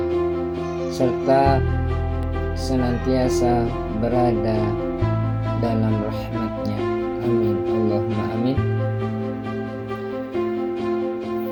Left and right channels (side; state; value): both; identical; correlation 1.00